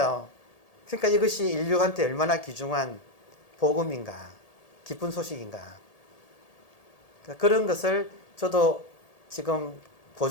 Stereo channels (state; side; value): late; right; 1.8 ms